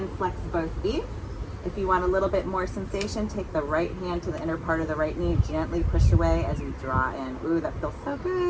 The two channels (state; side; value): identical; both; correlation 1.00